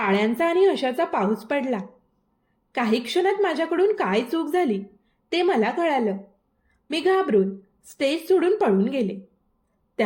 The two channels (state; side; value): identical; both; correlation 1.00